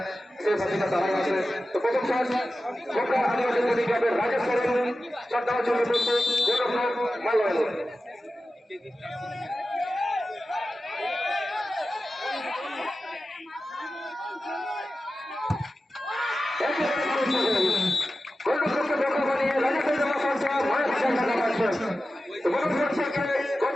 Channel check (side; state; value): both; normal; correlation 0.94